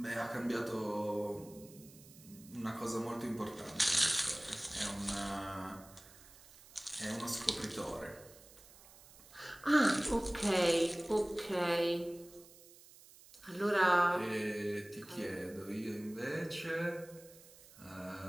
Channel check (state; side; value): noise; right; hiss, 21 dB below the sound